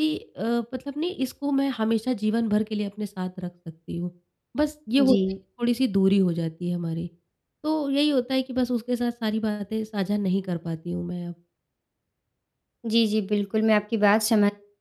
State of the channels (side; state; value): both; identical; correlation 1.00